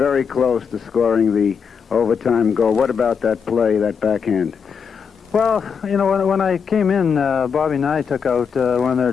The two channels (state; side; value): quieter; right; 6.5 dB